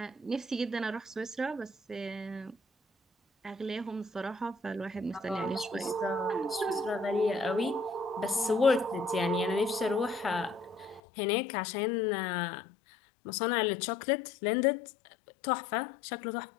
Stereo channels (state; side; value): drops out; right; at 11.0 s